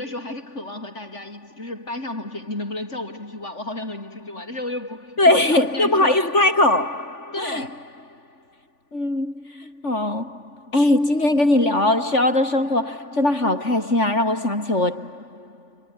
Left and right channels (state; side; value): late; right; 3.5 ms